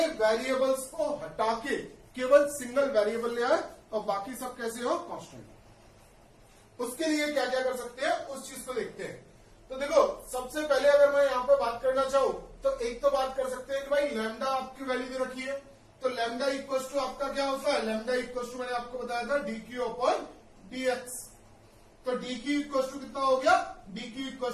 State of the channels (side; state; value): both; identical; correlation 1.00